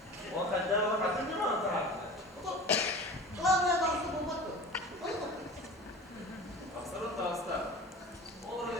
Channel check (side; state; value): both; normal; correlation 0.37